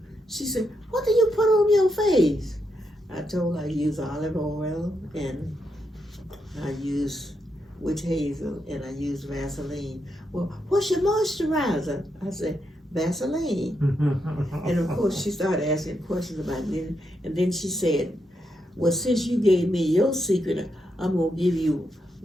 she said, "What do you put on your face?" I told her I use olive oil, and I use witch hazel, and I use Vaseline. "Well, what's your moisturizer?" I said, "Vaseline." And of course she started asking questions about it, and then she said, "Well, since you gave me your secret, I'm going to give you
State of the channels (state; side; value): normal; both; correlation 0.82